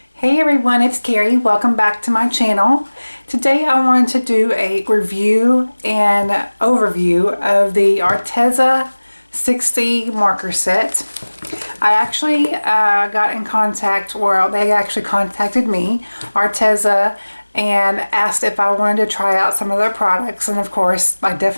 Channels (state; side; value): inverted; both; correlation -1.00